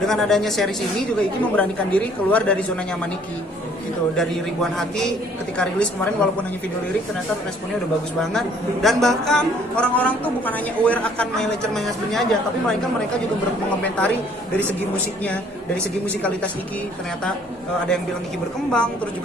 adanya series ini juga Iki memberanikan diri keluar dari zona nyaman Iki gitu. Dari Ribuan Hati ketika rilis kemarin walaupun hanya video lirik ternyata responnya udah bagus banget, dan bahkan orang-orang tuh bukan hanya aware akan My Lecture My Husband-nya aja, tapi mereka juga mengomentari dari segi musiknya, dari segi musikalitas Iki ternyata ada yang bilang Iki berkembang, terus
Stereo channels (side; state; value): both; normal; correlation 0.59